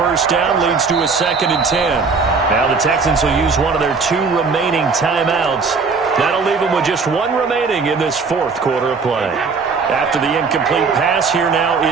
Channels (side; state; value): left; quieter; 4.8 dB